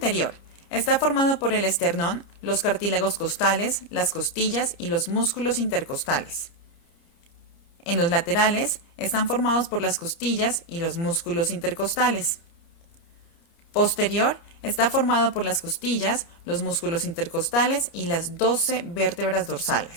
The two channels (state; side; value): late; right; 29 ms